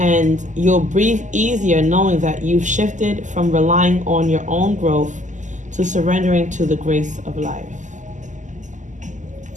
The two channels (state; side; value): late; left; 0.36 ms